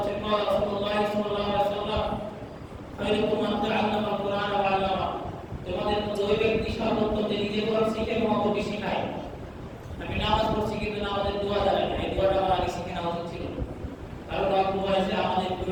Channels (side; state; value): both; identical; correlation 1.00